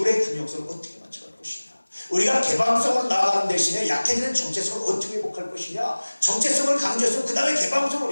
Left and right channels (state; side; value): inverted; both; correlation -1.00